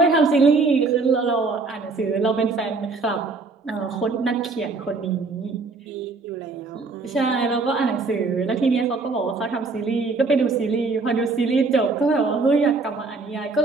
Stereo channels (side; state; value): left; quieter; 3.9 dB